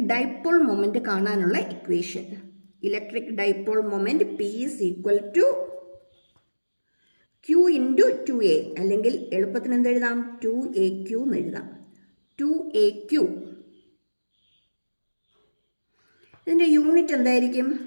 ഡൈപോൾ മൊമെന്റ് കാണാനുള്ള equation. Electric dipole moment P is equal to Q into 2a, അല്ലെങ്കിൽ എളുപ്പത്തിന് എന്തെഴുതാം, 2aq എന്ന് എഴുതാം. 2aq. ഇതിൻ്റെ യൂണിറ്റ് എന്തായിരിക്കും?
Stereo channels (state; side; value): inverted; both; correlation -1.00